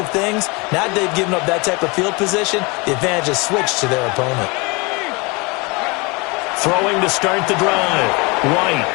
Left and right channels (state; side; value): quieter; right; 27.6 dB